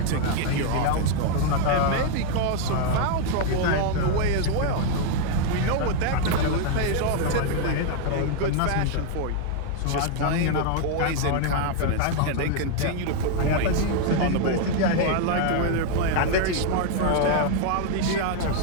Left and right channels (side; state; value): both; different; correlation 0.00